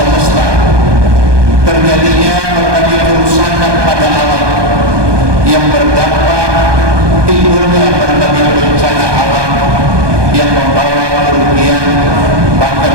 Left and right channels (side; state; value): left; late; 1.2 ms